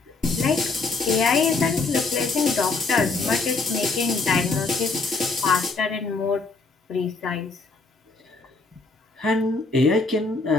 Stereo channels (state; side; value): quieter; right; 3.8 dB